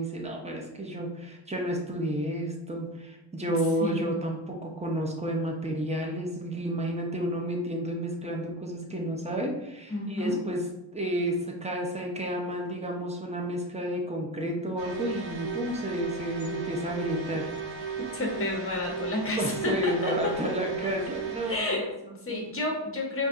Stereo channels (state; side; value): normal; both; correlation 0.20